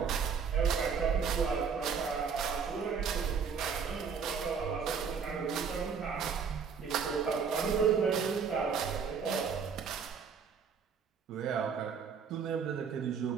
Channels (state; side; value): quieter; left; 6.2 dB